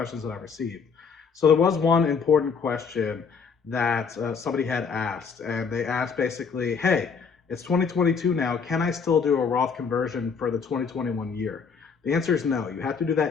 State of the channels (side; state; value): right; quieter; 5.7 dB